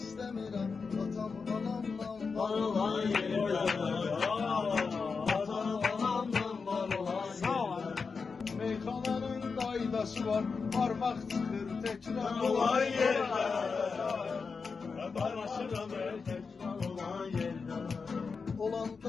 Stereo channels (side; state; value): right; quieter; 5.0 dB